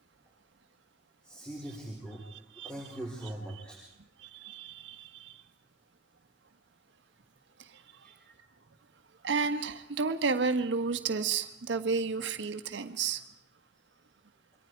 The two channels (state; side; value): quieter; left; 4.1 dB